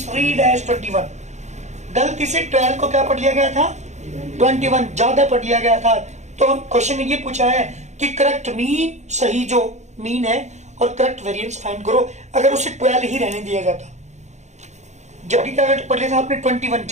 एज 21। गलती से 12 को क्या पढ़ लिया गया था? 21 ज्यादा पढ़ लिया गया था। तो क्वेश्चन ने ये पूछा है कि करेक्ट मीन, सही जो मीन है, और करेक्ट वेरिएंस फाइंड करो। अगर उसे 12 ही रहने दिया जाता, जबकि क्या पढ़ लिया था आपने? 21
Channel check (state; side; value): late; left; 0.34 ms